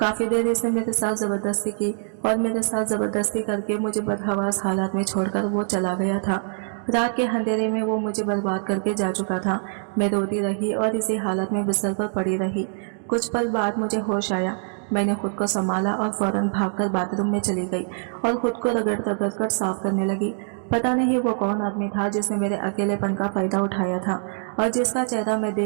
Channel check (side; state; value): left; silent; digital silence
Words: देर इसने मेरे साथ जबरदस्ती की और मेरे साथ जबरदस्ती करके मुझे बदहवास हालात में छोड़कर वो चला गया था। रात के अंधेरे में वो मुझे बर्बाद करके जा चुका था। मैं रोती रही और इसी हालत में बिस्तर पर पड़ी रही। कुछ पल बाद मुझे होश आया। मैंने खुद को संभाला और फौरन भागकर बाथरूम में चली गई और खुद को रगड़ रगड़ कर साफ करने लगी। पता नहीं वो कौन आदमी था जिसने मेरे अकेलेपन का फायदा उठाया था और जिसका चेहरा मैं